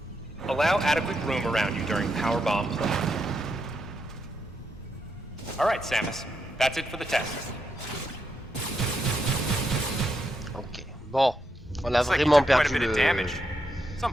Allow adequate room around you during power bomb play. All right, Samus. That's it for the test. Ok. Bon, on a Looks like you vraiment took quite a perdu bit of le... damage. It's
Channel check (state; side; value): normal; both; correlation 0.82